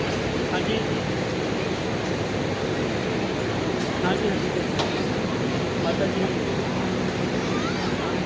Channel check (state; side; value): identical; both; correlation 1.00